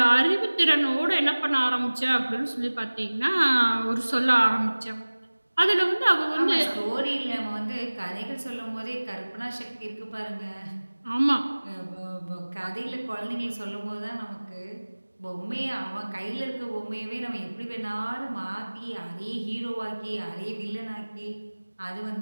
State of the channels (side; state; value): both; inverted; correlation -1.00